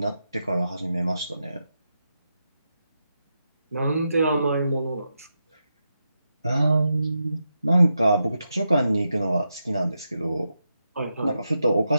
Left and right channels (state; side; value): inverted; both; correlation -0.87